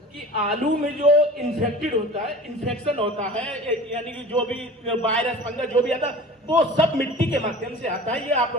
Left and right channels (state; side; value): normal; both; correlation 0.39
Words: कि आलू में जो इन्फेक्टेड होता है, इन्फेक्शन होता है, यानी कि जो भी वायरस फंगस जो भी आता है वो सब मिट्टी के माध्यम से आता है। ये आप